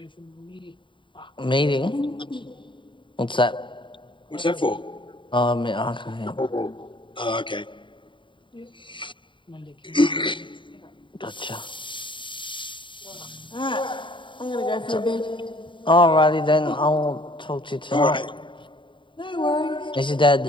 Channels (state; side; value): late; right; 0.24 ms